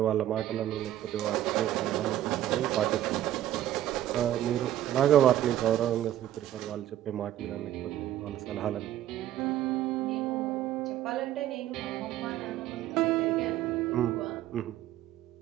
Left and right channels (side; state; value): left; quieter; 12.7 dB